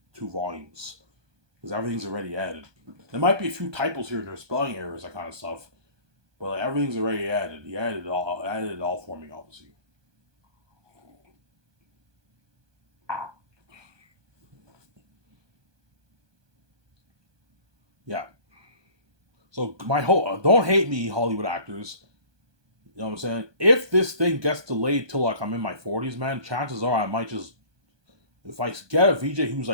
2 volumes. Because everything's already added. There might be a few typos here and there, spelling errors, that kind of stuff. But everything's already added. He added it all for me, obviously. Yeah. So my whole don't hate me, Hollywood actors. You know what I'm saying? If this thing gets delayed till I'm in my 40s, man, chances are I might just, if I get a VJ who's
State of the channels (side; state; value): left; late; 1.2 ms